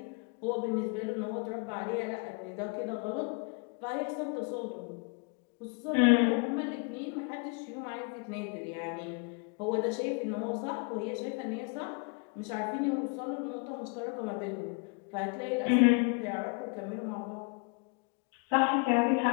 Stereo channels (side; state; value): right; quieter; 34.4 dB